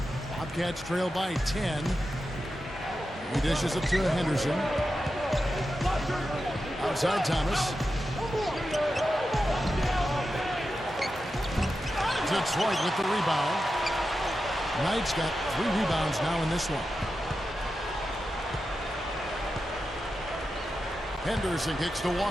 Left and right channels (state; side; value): normal; both; correlation 0.90